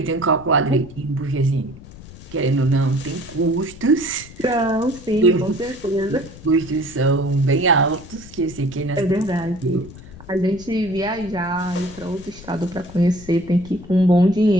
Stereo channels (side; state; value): left; noise; rumble, 17 dB below the sound